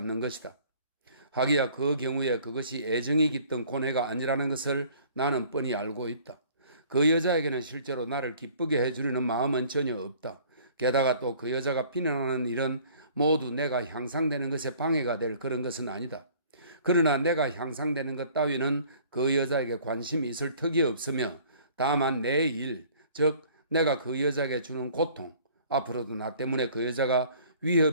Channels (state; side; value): inverted; both; correlation -0.53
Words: 것이다. 하기야 그 경우에 그것이 애정이 깃든 고뇌가 아니라는 것을 나는 뻔히 알고 있다. 그 여자에게는 실제로 나를 기쁘게 해주려는 마음은 전혀 없다. 게다가 또 그 여자가 비난하는 일은 모두 내가 향상되는 것에 방해가 될 그런 것은 아니다. 그러나 내가 향상되는 것 따위는 그 여자에게 관심이 있을 턱이 없으며 다만 내 일, 즉 내가 그 여자에게 주는 고통, 앞으로도 나 때문에 그 여자가